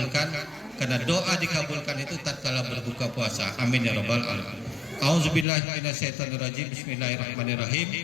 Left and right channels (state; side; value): drops out; right; at 5.5 s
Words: karena doa dikabulkan itu tatkala berbuka puasa. Amin ya rabbal alamin. Auzubillahi minasyaitonirrajim. Bismillahirrahmanirrahim.